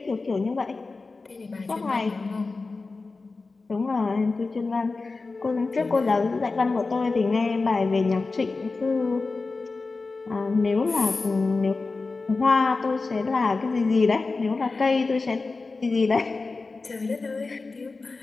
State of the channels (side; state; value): right; quieter; 3.8 dB